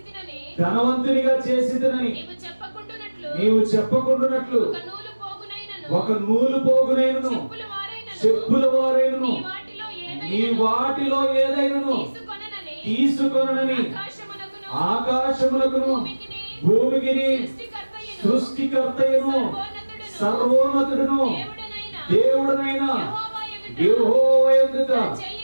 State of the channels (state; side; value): inverted; both; correlation -1.00